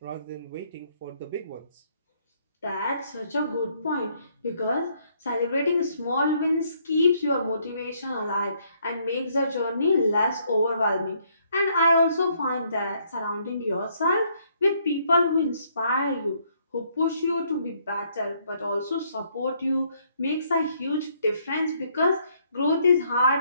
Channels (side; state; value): both; inverted; correlation -0.69